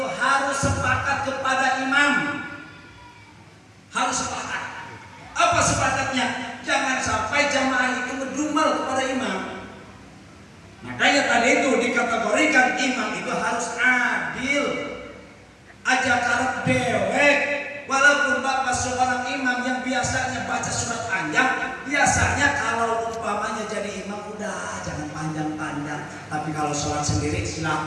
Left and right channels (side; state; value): both; identical; correlation 1.00